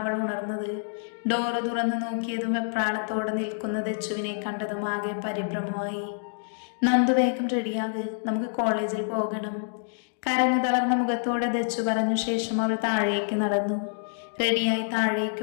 അവൾ ഉണർന്നത്. ഡോറ് തുറന്നു നോക്കിയതും വെപ്രാളത്തോടെ നിൽക്കുന്ന ദച്ചുവിനെ കണ്ടതും ആകെ പരിഭ്രമമായി. നന്ദു വേഗം റെഡിയാക്, നമുക്ക് കോളേജിൽ പോകണം. കരഞ്ഞു തളർന്ന മുഖത്തോടെ ദച്ചു പറഞ്ഞു ശേഷം അവൾ താഴേക്ക് നടന്നു. റെഡിയായി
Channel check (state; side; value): silent; right; digital silence